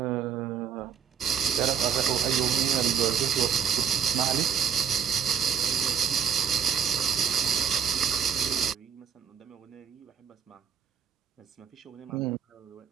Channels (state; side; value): quieter; left; 7.6 dB